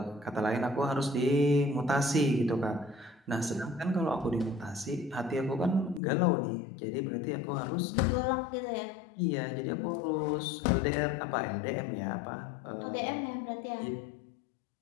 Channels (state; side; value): drops out; right; at 6.0 s